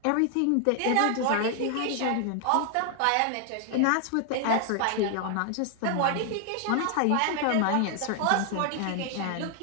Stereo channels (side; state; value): both; different; correlation 0.00